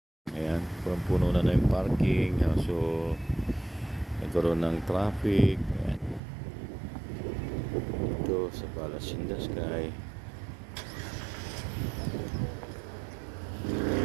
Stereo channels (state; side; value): drops out; left; at 6.2 s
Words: Ayan, puno na yung parking. So, nagkaroon ng traffic. Ayan. Ito sa Palace in the Sky.